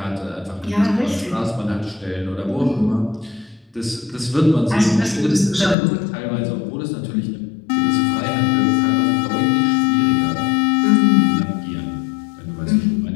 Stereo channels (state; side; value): drops out; right; at 5.8 s